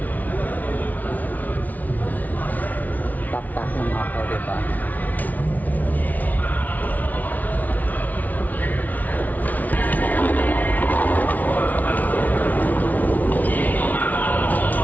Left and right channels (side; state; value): right; late; 0.077 ms